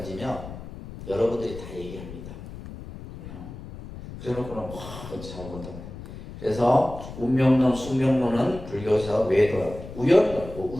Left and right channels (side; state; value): left; noise; rumble, 13 dB below the sound